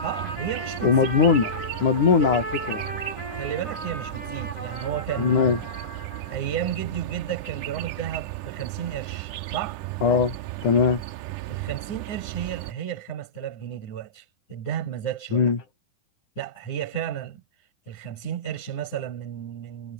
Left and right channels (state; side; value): late; right; 9.8 ms